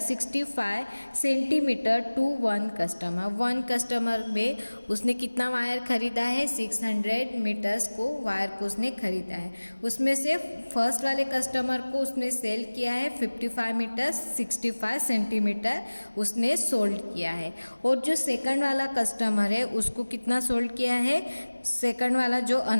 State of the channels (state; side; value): inverted; both; correlation -1.00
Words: centimetre to 1 customer. 1 customer में उसने कितना वायर खरीदा है, 600 मीटर्स को वायर को उसने खरीदा है। उसमें से फर्स्ट वाले कस्टमर को उसने सेल किया है 55 मीटर 65 सेंटीमीटर उसने सोल्ड किया है, और जो सेकंड वाला कस्टमर है उसको कितना सोल्ड किया है, सेकंड वाला जो